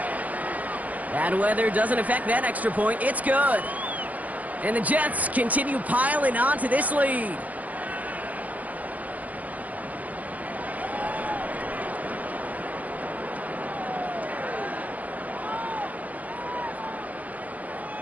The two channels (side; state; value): left; late; 0.077 ms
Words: Bad weather doesn't affect that extra point. It's good. And the Jets continue piling on to this lead.